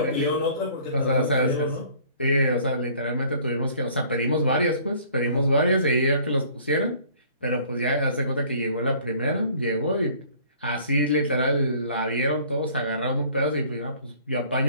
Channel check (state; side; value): inverted; both; correlation -0.54